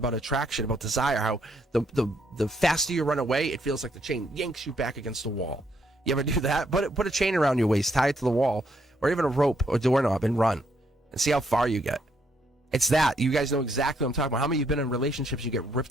attraction, about desire, how the faster you run away, it feels like the chain yanks you back against the wall. You ever do that? Put a chain around your waist, tie it to the wall, or even a rope or doorknob and run and see how far you get. It's that. You guys know exactly what I'm talking about. How many of you have been in relationships, you get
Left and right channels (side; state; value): both; normal; correlation 0.73